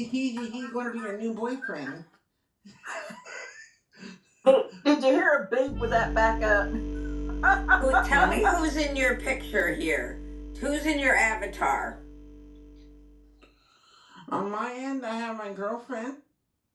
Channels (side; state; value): both; identical; correlation 1.00